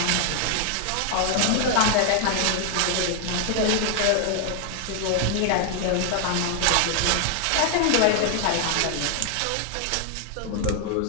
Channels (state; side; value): different; both; correlation 0.00